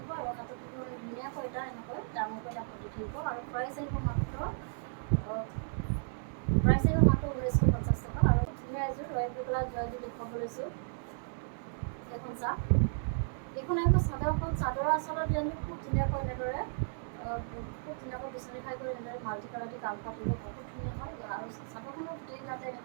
আৰু হাতত থাকিব মানে ধুনীয়াকৈ এটা এনেকৈ ডাঙৰকৈ এটা পতি থাকিব আৰু প্ৰাইচ আহিব মাত্ৰ 1950 টকা। আৰু ধুনীয়া এযোৰ ৰয়েল ব্লু কালাৰ যোৰা এযোৰ দেখুৱাব লৈছোঁ। এইখন চাওক, এইখন আহিব চাদৰখন। চাদৰৰ আচলৰ ডিজাইনটো খুব ধুনীয়াকৈ এনেদৰে খুব ধুনীয়াকৈ বিচনী খাই কৰি এনেদৰে মাল্টি কালাৰ দি কাম কৰা থাকিব, বহুত ধুনীয়া হয়। আৰু চাদৰখনৰ গোটেই গাতে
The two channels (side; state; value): left; silent; 55 dB below the other